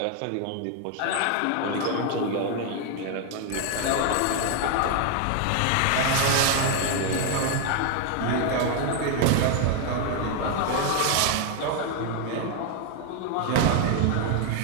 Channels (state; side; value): different; both; correlation 0.00